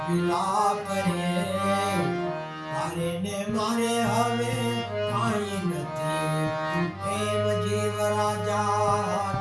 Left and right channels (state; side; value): identical; both; correlation 1.00